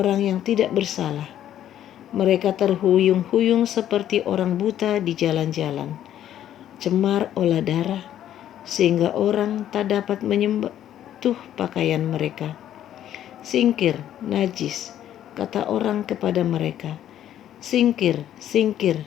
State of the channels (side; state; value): right; quieter; 11.3 dB